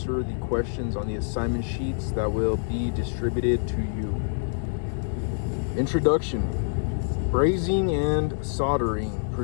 the questions on the assignment sheets that will be distributed to you. Introduction. Brazing and soldering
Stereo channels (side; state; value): right; silent; digital silence